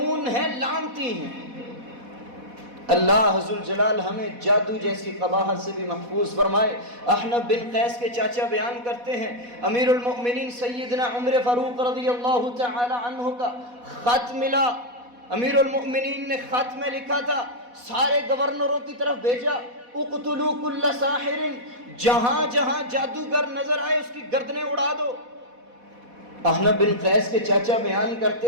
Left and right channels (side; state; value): left; late; 4.1 ms